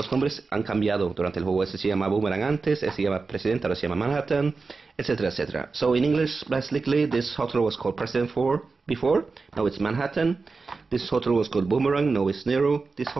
nombres han cambiado durante el juego. Ese se llama Boomerang antes, ese se llama President, ahora se llama Manhattan, etcétera, etcétera. So in English, basically, this hotel was called President before, now it's Manhattan. This hotel was called Boomerang, now it's Nero. This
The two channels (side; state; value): left; quieter; 4.2 dB